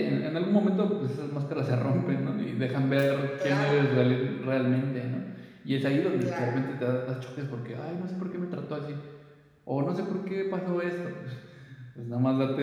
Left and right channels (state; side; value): identical; both; correlation 1.00